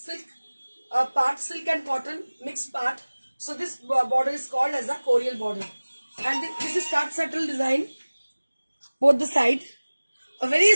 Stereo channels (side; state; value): both; inverted; correlation -1.00